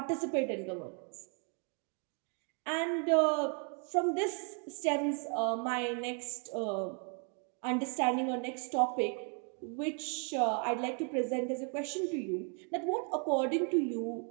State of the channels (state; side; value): quieter; left; 37.4 dB